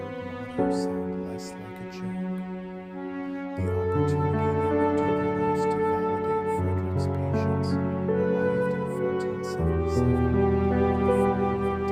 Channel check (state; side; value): identical; both; correlation 1.00